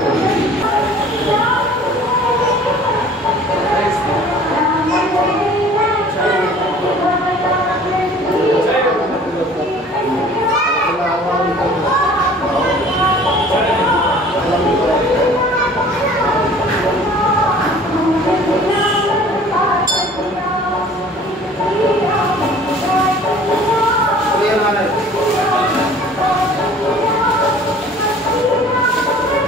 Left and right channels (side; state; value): both; normal; correlation 0.49